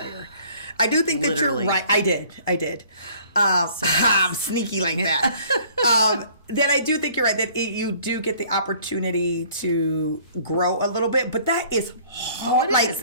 I do think that Literally. you're right. I did. I'm sneaky like that. That I do think you're right, that you do get the opportunity to grow a little bit, but that is hard. Oh, it is.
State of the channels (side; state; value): both; inverted; correlation -0.55